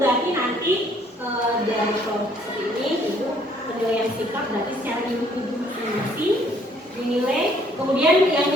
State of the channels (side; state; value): both; normal; correlation 0.63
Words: nanti dari kelompok seperti ini itu penilaian sikap berarti secara individu masing-masing dinilai. Kemudian yang